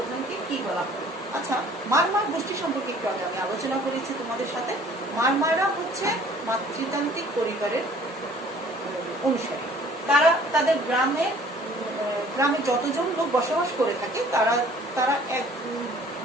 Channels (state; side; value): normal; both; correlation 0.53